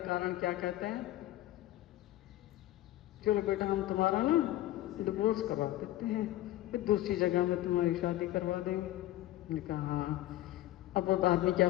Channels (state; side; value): quieter; right; 14.9 dB